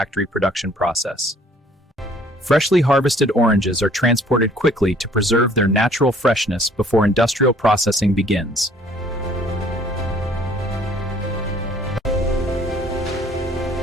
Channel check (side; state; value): both; normal; correlation 0.57